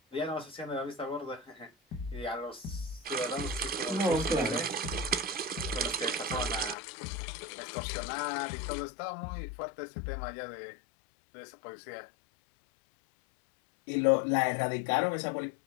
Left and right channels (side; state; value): right; drops out; at 6.8 s